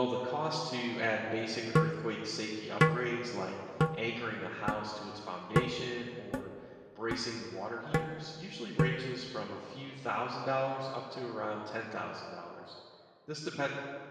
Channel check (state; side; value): identical; both; correlation 1.00